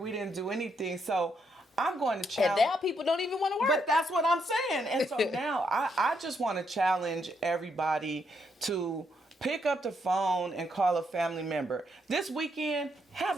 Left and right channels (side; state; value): both; normal; correlation 0.76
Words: didn't do anything. So I'm going to And challenge. now people don't even want to work. But that's what I'm saying. And so now I just want to challenge everybody to pick up the phone and call a family member. This weekend, have